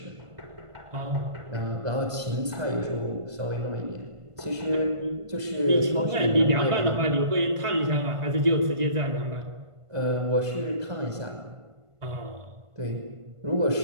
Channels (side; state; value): left; late; 1.5 ms